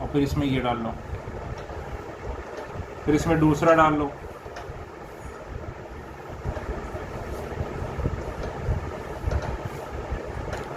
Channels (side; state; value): both; identical; correlation 1.00